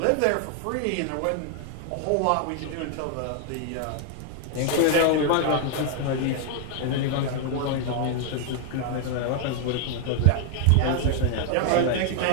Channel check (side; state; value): both; different; correlation 0.00